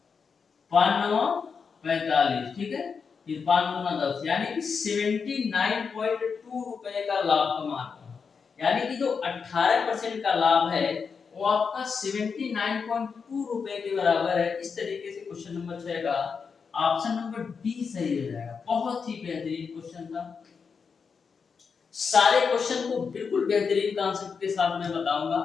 5 9 45, ठीक है। फिर 5 गुना 10 यानी कि 79.2 रुपए का लाभ कमा रहे हैं। यानी कि जो 18% का लाभ है वो आपका 79.2 रुपए के बराबर है। इस तरीके से क्वेश्चन नंबर 6 का ऑप्शन नंबर डी सही हो जाएगा। बहुत ही बेहतरीन क्वेश्चन था। सारे क्वेश्चन को बिल्कुल बेहतरीन कॉन्सेप्ट के साथ मैं बताऊंगा,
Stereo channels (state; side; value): quieter; right; 5.7 dB